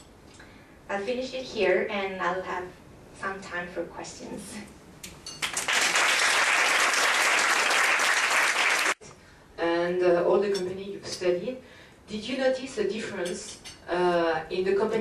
I'll finish it here and I'll have some time for questions. And all the company you've studied, did you notice a difference in the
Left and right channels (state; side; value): identical; both; correlation 1.00